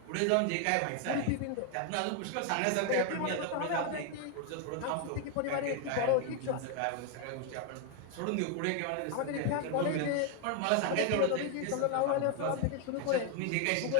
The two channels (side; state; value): both; different; correlation 0.00